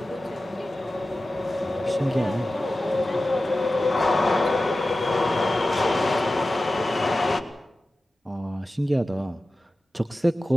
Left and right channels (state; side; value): normal; both; correlation 0.95